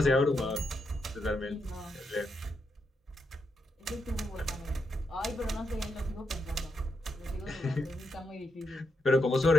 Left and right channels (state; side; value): normal; both; correlation 0.83